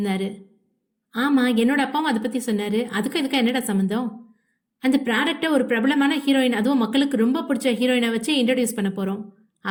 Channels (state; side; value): identical; both; correlation 1.00